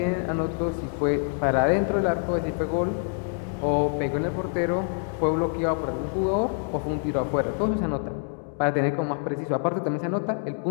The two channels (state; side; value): silent; right; 61 dB below the other